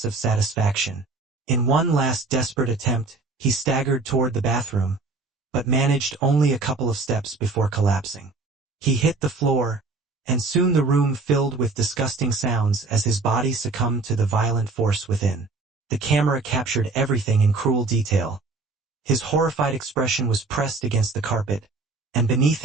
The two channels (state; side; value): quieter; left; 3.7 dB